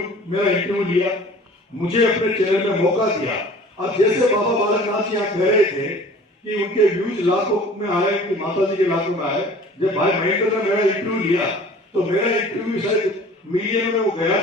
मेरा इंटरव्यू लिया, मुझे अपने चैनल में मौका दिया। अब जैसे बाबा बालकनाथ जी यहाँ कह रहे थे कि उनके व्यूज लाखों में आए, कि माता जी के लाखों में आए, जब भाई महेंद्र ने मेरा इंटरव्यू लिया तो मेरा इंटरव्यू शायद मीडिया में वो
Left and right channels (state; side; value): normal; both; correlation 0.47